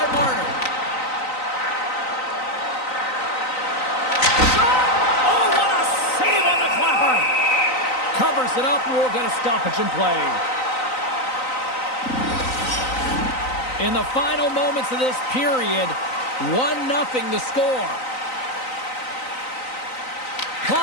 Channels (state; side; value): late; right; 3.9 ms